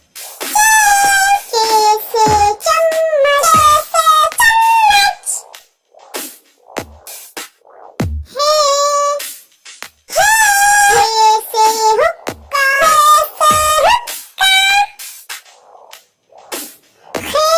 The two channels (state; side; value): identical; both; correlation 1.00